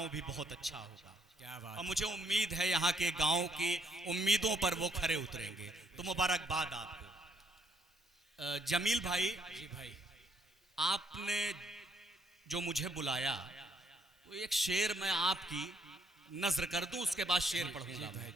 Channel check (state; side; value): normal; both; correlation 0.71